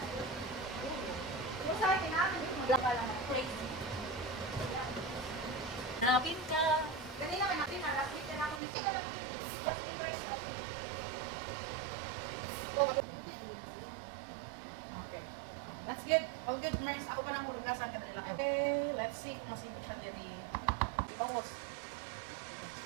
Yung sa akin namin, yung magla lang. Crazy. Hanapin ka. Kanina ka natin, last week na ako. Hindi ka lang just in price of. Okay. That's good. All good, Mars. Ako pa nang kurugasan ka nila. Okay, let's see kung masipit siya diri. Almost.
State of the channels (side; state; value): left; drops out; at 8.6 s